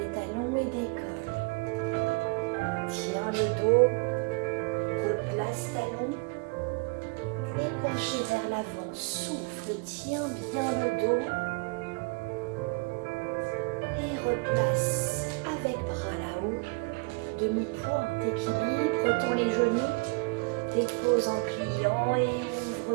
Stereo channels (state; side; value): quieter; left; 30.3 dB